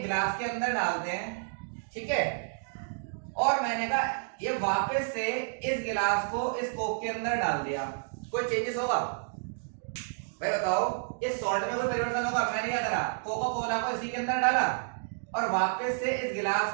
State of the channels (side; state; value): left; silent; digital silence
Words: गिलास के अंदर डालते हैं, ठीक है, और मैंने कहा ये वापस से इस गिलास को इस कोक के अंदर डाल दिया, कोई चेंजेस होगा भाई? बताओ, इस सॉल्ट में कोई परिवर्तन होगा? मैंने क्या करा, कोका कोला को इसी के अंदर डाला और वापस से इस